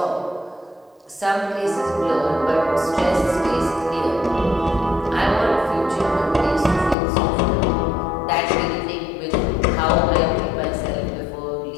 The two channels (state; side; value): drops out; right; at 7.0 s